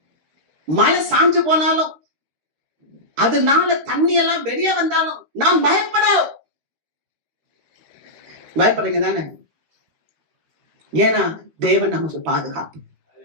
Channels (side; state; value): left; late; 13 ms